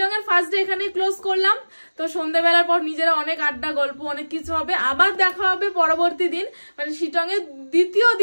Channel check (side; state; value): both; inverted; correlation -1.00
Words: এর ফার্স্ট ডে এখানেই ক্লোজ করলাম। তো সন্ধ্যাবেলার পর নিজেরা অনেক আড্ডা, গল্প, অনেক কিছু হবে। আবার দেখা হবে পরবর্তী দিন, মানে শিটং এর দ্বিতীয়